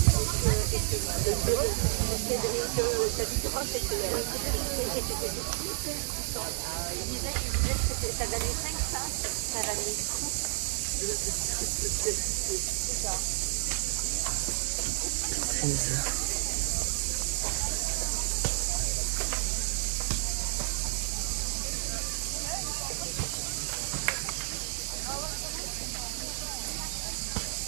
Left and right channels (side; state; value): left; silent; digital silence